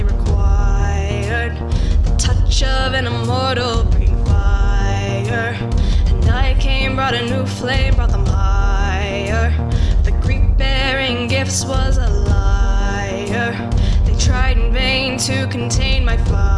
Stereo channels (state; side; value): identical; both; correlation 1.00